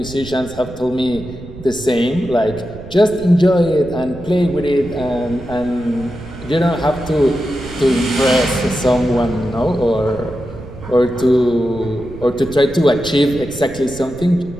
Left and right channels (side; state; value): right; noise; rumble, 14 dB below the sound